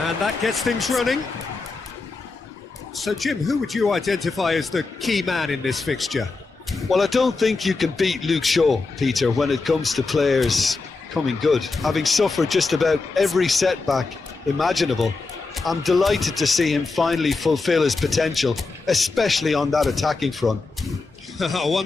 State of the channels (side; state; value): right; quieter; 3.9 dB